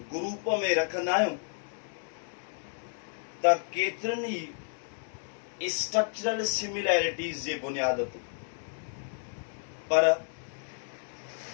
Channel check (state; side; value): silent; right; 57 dB below the other